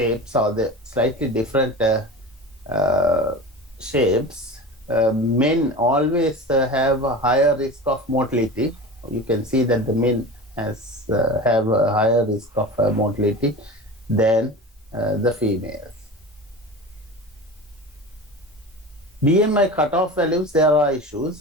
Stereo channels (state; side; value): normal; both; correlation 0.32